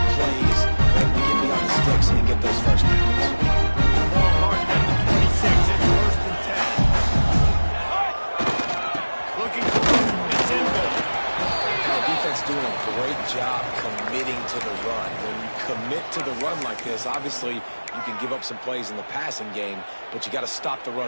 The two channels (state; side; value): inverted; both; correlation -1.00